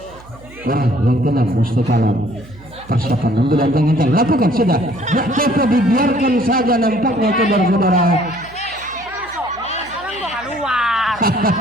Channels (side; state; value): right; noise; hum, 22 dB below the sound